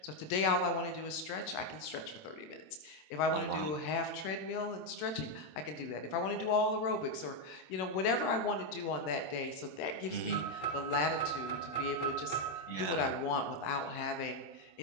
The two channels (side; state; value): right; late; 27 ms